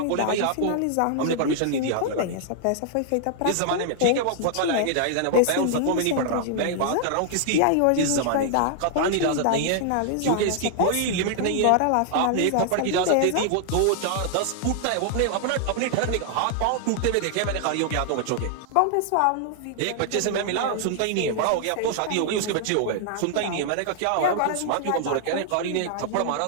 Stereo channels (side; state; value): both; different; correlation 0.00